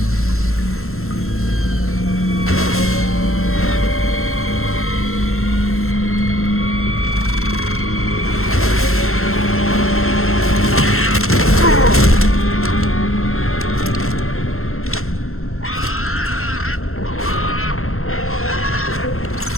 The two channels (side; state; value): right; late; 0.62 ms